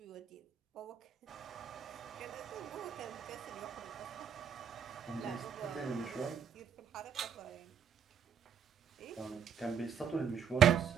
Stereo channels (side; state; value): left; quieter; 7.8 dB